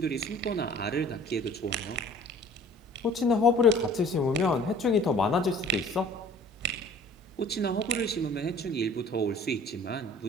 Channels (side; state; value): both; normal; correlation 0.50